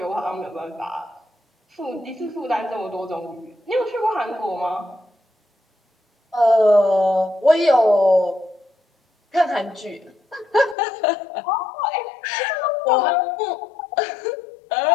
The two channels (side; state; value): right; drops out; at 10.8 s